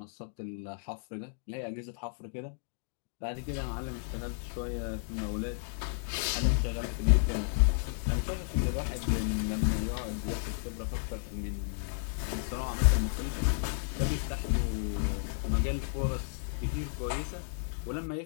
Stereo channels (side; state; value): right; silent; digital silence